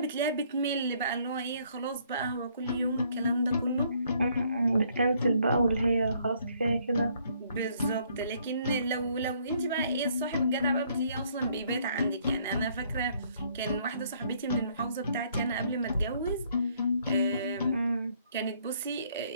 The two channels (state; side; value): inverted; both; correlation -0.66